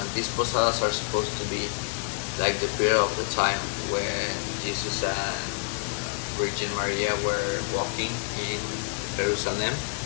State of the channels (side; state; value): right; silent; 60 dB below the other